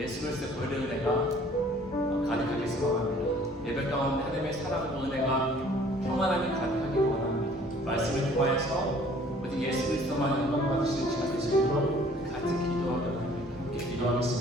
그리스도의 보혈의 은혜가 가득하게 소망합니다. 예배 가운데 하나님의 사랑과 은혜가 평안함이 가득하게 원합니다. 말씀을 통하여서 오직 예수 그리스도만 영광 받으시는 시간 되시도록 같이 기도하며 함께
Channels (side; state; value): both; normal; correlation 0.55